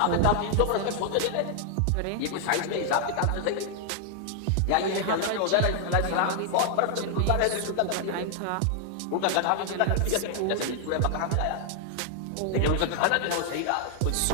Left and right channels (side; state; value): both; different; correlation 0.00